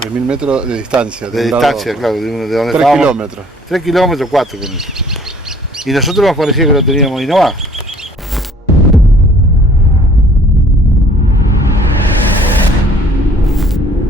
3.000 metros de distancia. De distancia, claro, de donde 3 estábamos. kilómetros. 3 kilómetros, 4 con eso. Y nosotros nos parecía que lo teníamos y no va.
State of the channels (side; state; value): both; normal; correlation 0.57